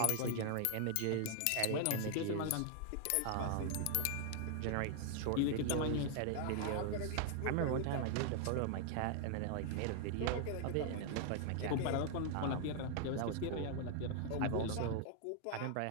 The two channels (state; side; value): different; both; correlation 0.00